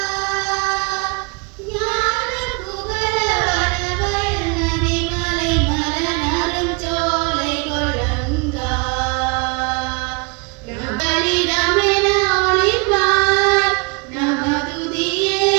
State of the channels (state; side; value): quieter; left; 31.3 dB